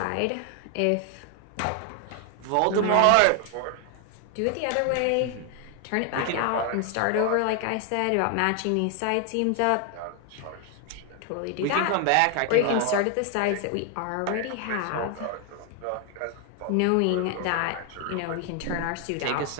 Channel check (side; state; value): both; different; correlation 0.00